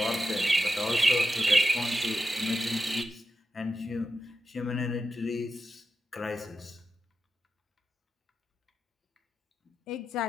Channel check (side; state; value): both; normal; correlation 0.90